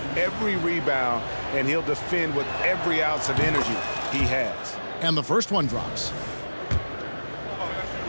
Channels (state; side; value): inverted; both; correlation -1.00